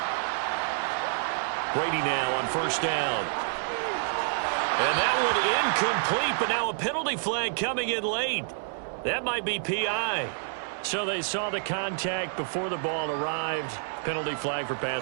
Brady now on first down. And that one incomplete, but now a penalty flag coming in late. That might be PI. So they saw the contact before the ball arrived. Penalty flag for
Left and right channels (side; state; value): left; silent; digital silence